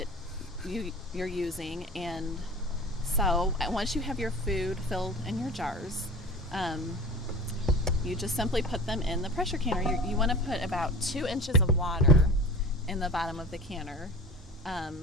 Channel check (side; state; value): both; normal; correlation 0.36